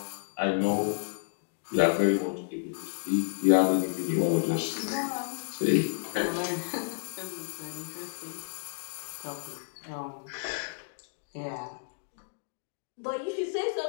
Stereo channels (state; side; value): silent; right; digital silence